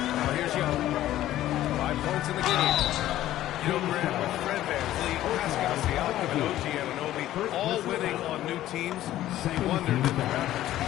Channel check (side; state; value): right; quieter; 13.8 dB